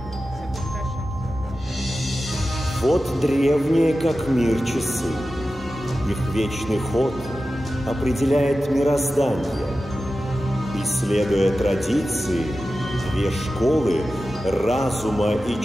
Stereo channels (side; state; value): both; normal; correlation 0.93